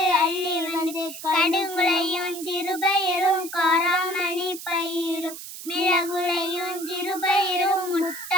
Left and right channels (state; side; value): noise; right; hiss, 11 dB below the sound